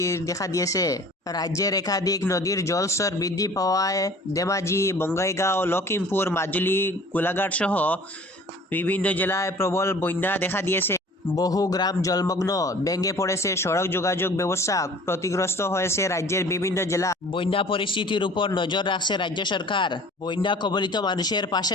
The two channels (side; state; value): both; normal; correlation 0.47